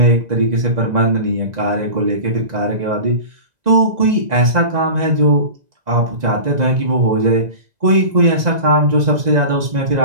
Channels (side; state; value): left; late; 2.0 ms